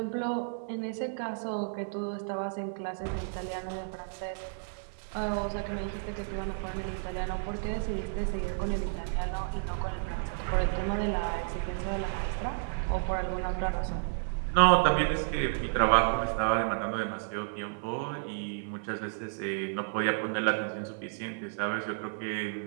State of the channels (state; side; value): silent; left; digital silence